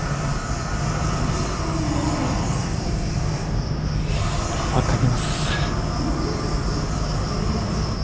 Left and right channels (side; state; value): both; identical; correlation 1.00